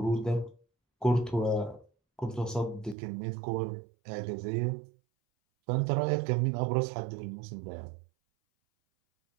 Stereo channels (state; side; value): drops out; left; at 3.0 s